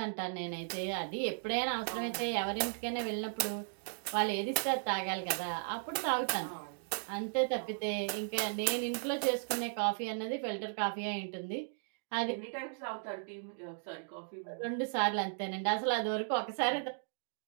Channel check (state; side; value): silent; left; digital silence